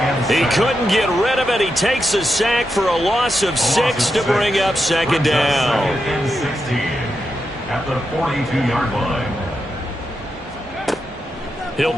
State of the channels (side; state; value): both; normal; correlation 0.86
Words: He couldn't get rid of it. He takes a sack for a loss of 6 to bring up second down. At the 42-yard line. He'll